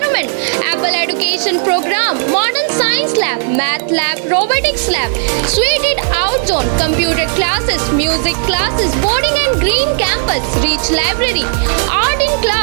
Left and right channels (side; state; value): left; silent; 61 dB below the other